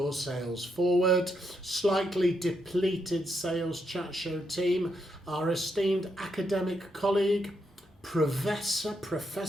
sales forward. Slightly depleted Sales Chat Show team, our esteemed academic colleague, Professor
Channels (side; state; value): both; normal; correlation 0.79